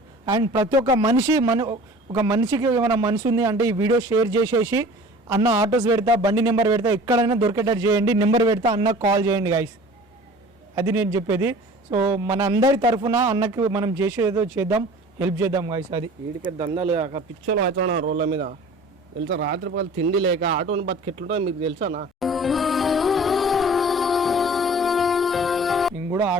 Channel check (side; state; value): both; normal; correlation 0.44